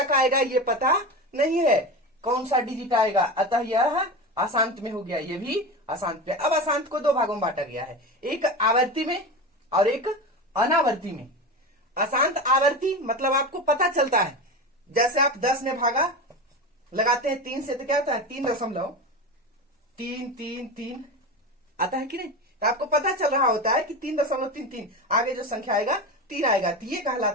आएगा ये पता नहीं है, कौन सा डिजिट आएगा, अतः यह अशांत में हो गया, ये भी अशांत में। अब अशांत को दो भागों में बांटा गया है, एक आवर्ती में और एक अनावर्ती में। अशांत आवर्ती मतलब आपको पता चलता है, जैसे आप 10 ने भागा लगाते हैं 3 से तो क्या होता है 3.333 आता है कि नहीं। तो आपको पता चल रहा होता है कि 3.33 आगे जो संख्या आएगा 3 आएगा, तो ये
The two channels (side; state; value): both; normal; correlation 0.24